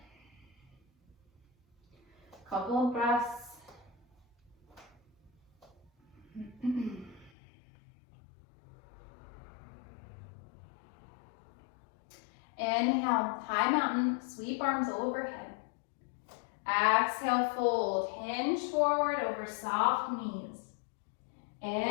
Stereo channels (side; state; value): right; drops out; at 7.3 s